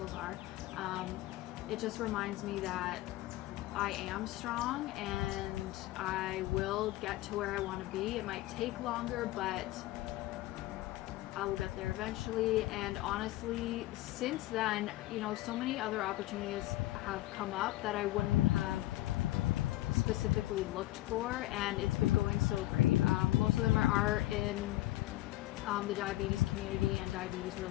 are, it just reminds me that I am strong and I will get to where I want to be. It might take longer, but I will get there eventually. And honestly, since then, you know, so many other opportunities have come up that I wouldn't have specifically looked for, and it's been going so great. Most of them are in the diabetes community and diabetes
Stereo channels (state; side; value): quieter; right; 16.9 dB